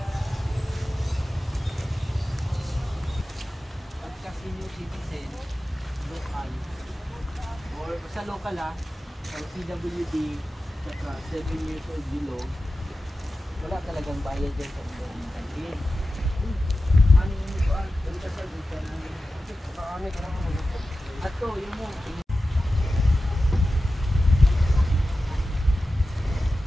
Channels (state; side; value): normal; both; correlation 0.93